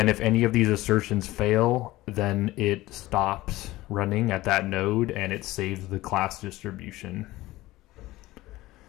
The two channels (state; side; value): quieter; right; 17.8 dB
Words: if any of these assertions fail, then it stops running at that node and it saves the class distribution.